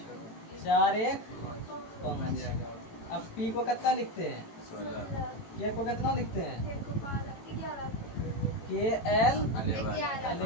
4 1 5। अब P को कितना लिखते हैं? 16 K को कितना लिखते हैं? 11 K L 11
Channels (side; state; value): right; late; 18 ms